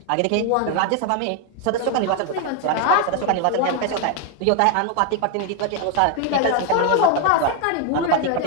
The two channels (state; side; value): different; both; correlation 0.01